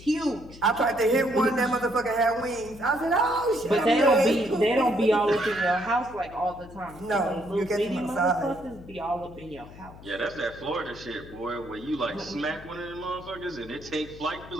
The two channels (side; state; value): left; noise; hum, 18 dB below the sound